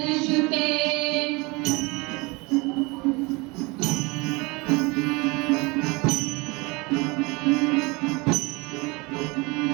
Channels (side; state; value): left; quieter; 26.2 dB